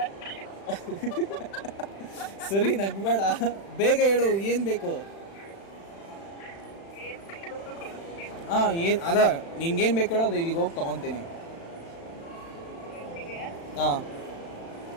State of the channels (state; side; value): late; right; 36 ms